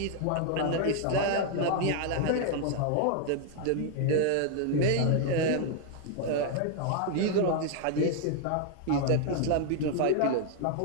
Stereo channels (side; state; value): both; different; correlation 0.00